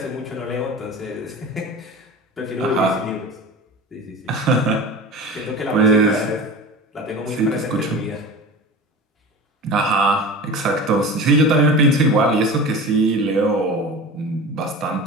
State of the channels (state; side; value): normal; both; correlation 0.33